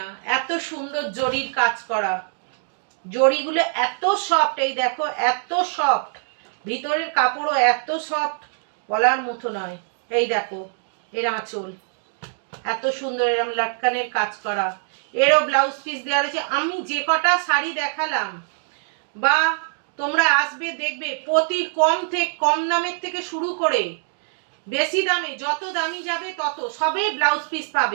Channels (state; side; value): silent; left; 63 dB below the other